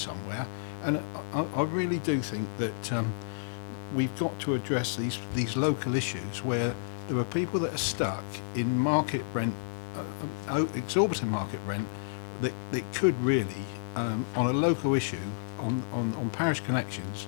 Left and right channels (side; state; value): right; silent; digital silence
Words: and I really do think that we've got to address these local issues where there are people that are stuck in market rent, exorbitant market rent, that could really, on a local issue, on parish connections,